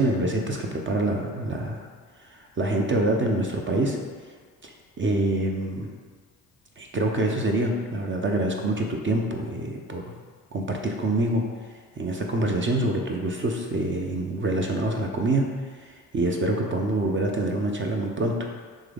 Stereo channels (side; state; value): both; normal; correlation 0.44